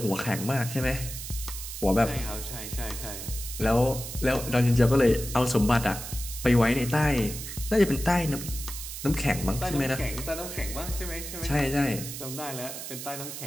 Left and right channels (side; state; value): right; noise; hiss, 8 dB below the sound